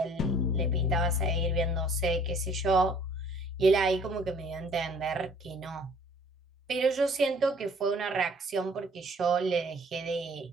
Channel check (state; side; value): normal; both; correlation 0.55